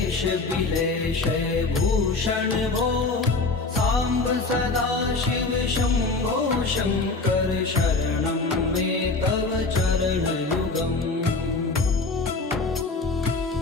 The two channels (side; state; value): right; quieter; 3.7 dB